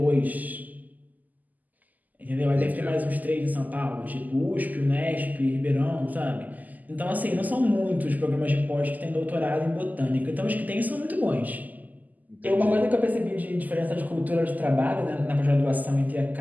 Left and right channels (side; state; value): left; late; 0.081 ms